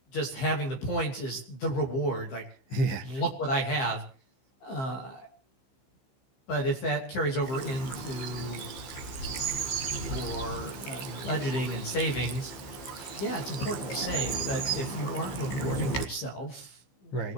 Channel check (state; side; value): late; right; 15 ms